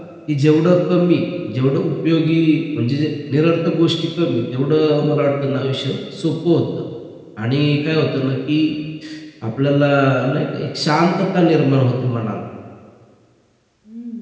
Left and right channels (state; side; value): identical; both; correlation 1.00